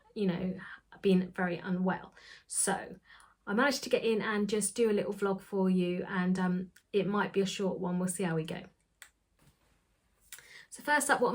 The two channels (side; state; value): both; identical; correlation 1.00